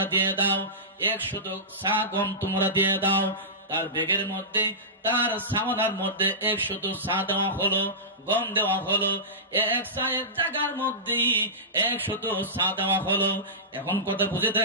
দিয়ে দাও, 100 সা গম তোমরা দিয়ে দাও। তার ব্যাগের মধ্যে, তার সামানার মধ্যে 100 সা দেওয়া হলো, গম দেওয়া হলো। এক সায়ের জায়গার মধ্যে 100 সা দেওয়া হলো। এখন কথা বুঝে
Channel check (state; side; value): normal; both; correlation -0.18